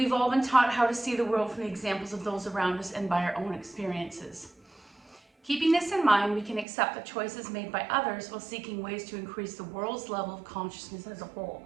all been taught how to see the world from the examples of those around us and by our own experiences. Keeping this in mind, we can accept the choices made by others while seeking ways to increase the world's level of consciousness as a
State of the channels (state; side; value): drops out; left; at 6.7 s